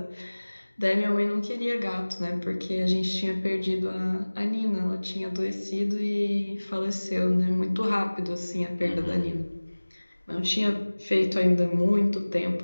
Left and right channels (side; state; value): both; inverted; correlation -1.00